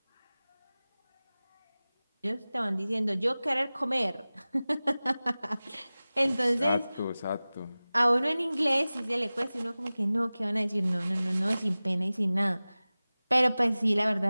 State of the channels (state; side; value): inverted; both; correlation -0.98